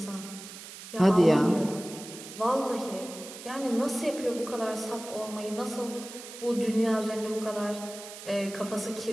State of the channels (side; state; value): right; noise; hiss, 13 dB below the sound